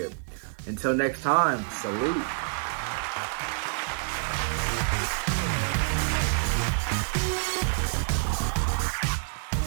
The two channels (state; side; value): silent; left; digital silence